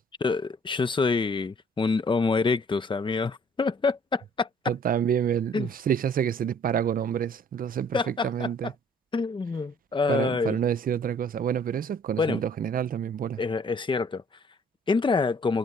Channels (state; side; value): normal; both; correlation 0.57